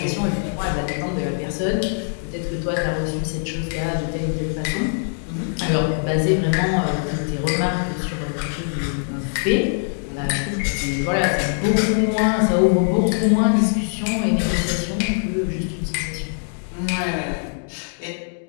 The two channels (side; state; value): right; silent; 64 dB below the other